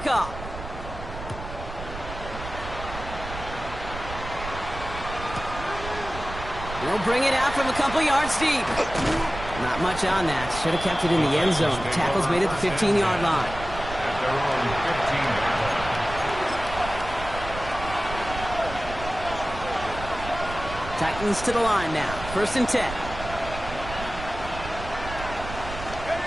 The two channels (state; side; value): noise; right; rumble, 10 dB below the sound